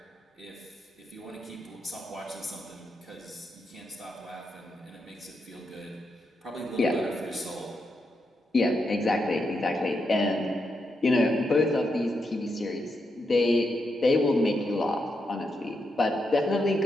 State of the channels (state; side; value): normal; both; correlation 0.83